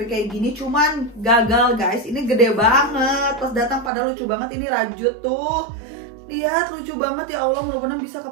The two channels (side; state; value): left; drops out; at 3.9 s